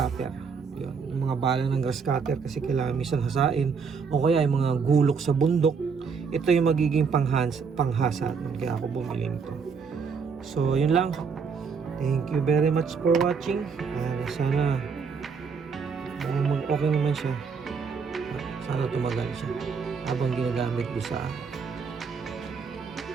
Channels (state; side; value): quieter; left; 5.6 dB